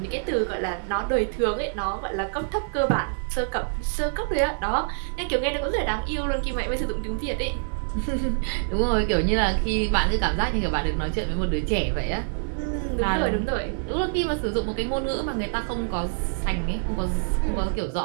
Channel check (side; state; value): left; silent; 61 dB below the other